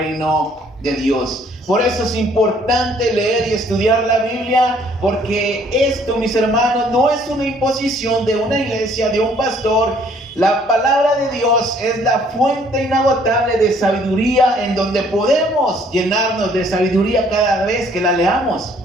de Dios. Por eso es importante leer y estudiar la Biblia, porque esto, mis hermanos, no es una imposición de una iglesia, de un pastor. La palabra de Dios es la fuente inagotable de sabiduría, en donde podemos llenarnos de sabiduría cada vez que la leamos.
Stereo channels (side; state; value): both; normal; correlation 0.61